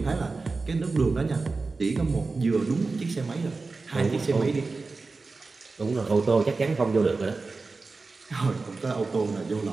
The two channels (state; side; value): quieter; left; 3.9 dB